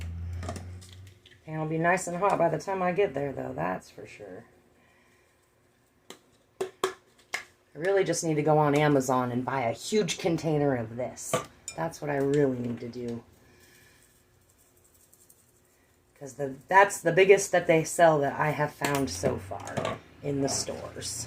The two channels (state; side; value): identical; both; correlation 1.00